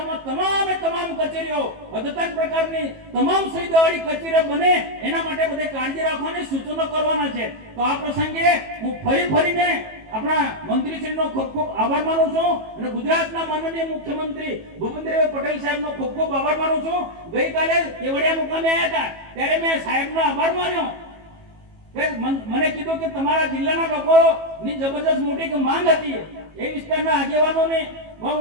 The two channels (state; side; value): late; left; 18 ms